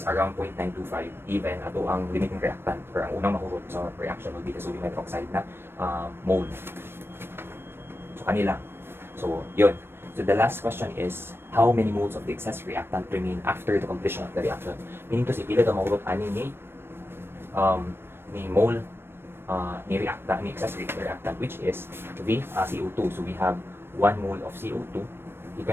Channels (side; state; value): left; late; 0.11 ms